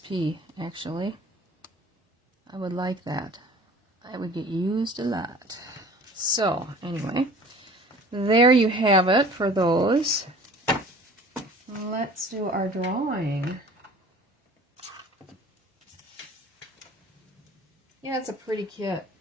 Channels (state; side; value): normal; both; correlation 0.47